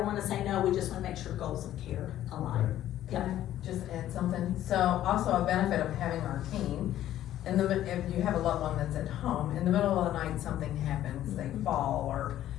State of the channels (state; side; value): quieter; right; 12.6 dB